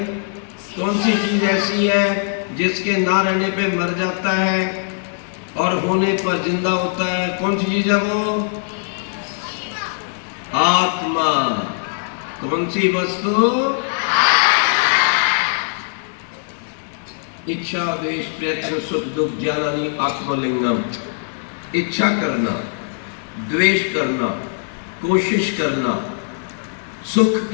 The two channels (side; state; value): right; silent; digital silence